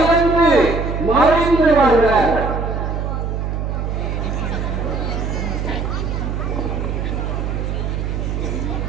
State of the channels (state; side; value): noise; right; hum, 2 dB below the sound